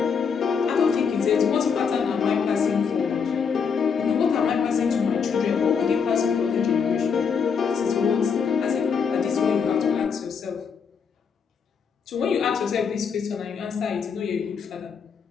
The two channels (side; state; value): right; quieter; 6.3 dB